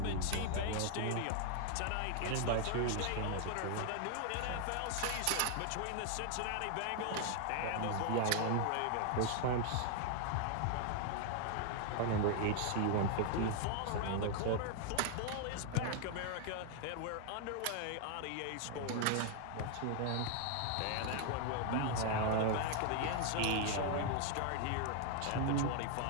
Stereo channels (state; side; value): different; both; correlation 0.00